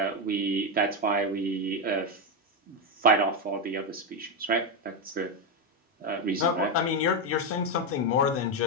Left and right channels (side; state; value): both; normal; correlation 0.07